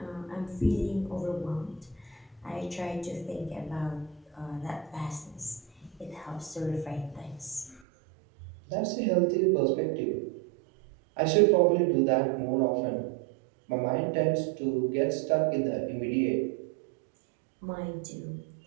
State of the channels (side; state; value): left; drops out; at 7.8 s